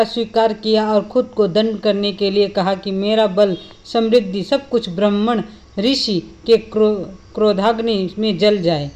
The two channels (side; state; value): both; identical; correlation 1.00